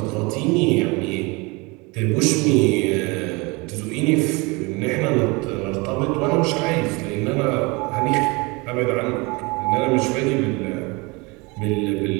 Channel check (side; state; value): left; quieter; 26.6 dB